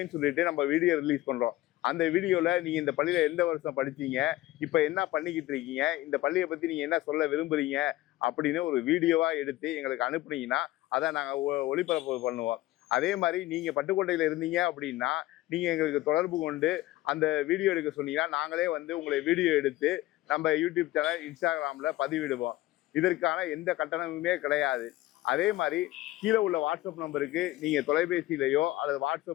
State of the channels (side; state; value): right; quieter; 16.7 dB